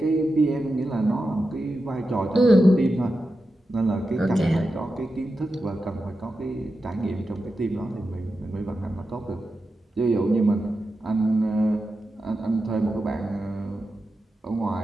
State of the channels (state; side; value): normal; both; correlation 0.90